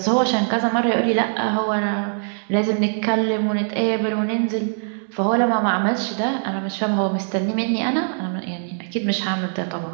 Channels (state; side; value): silent; left; digital silence